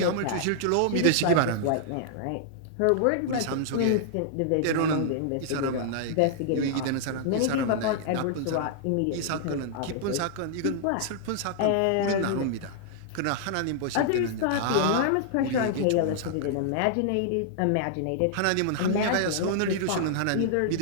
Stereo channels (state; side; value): different; both; correlation -0.01